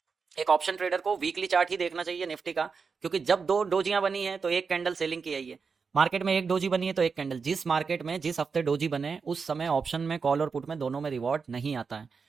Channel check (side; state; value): left; quieter; 5.3 dB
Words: एक ऑप्शन ट्रेडर को वीकली चार्ट ही देखना चाहिए निफ्टी का, क्योंकि जब दो डोजियां बनी है तो एक कैंडल सेलिंग की आई है। मार्केट में एक डोजी बनी है तो एक कैंडल, जिस मार्केट में जिस हफ्ते डोजी बने उस समय ऑप्शन में, कॉल और पुट में दोनों में रिवॉर्ड नहीं आता है।